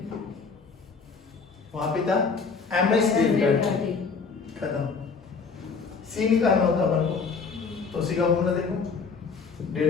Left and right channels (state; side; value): quieter; right; 5.0 dB